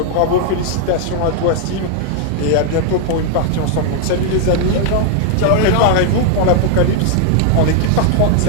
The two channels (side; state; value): both; different; correlation 0.00